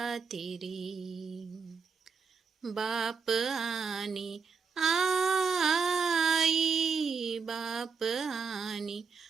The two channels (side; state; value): left; quieter; 5.4 dB